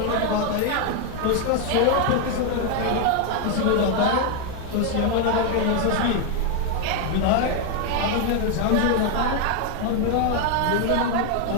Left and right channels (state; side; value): different; both; correlation 0.01